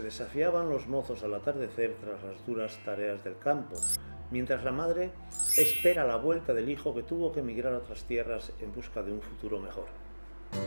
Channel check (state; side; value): inverted; both; correlation -1.00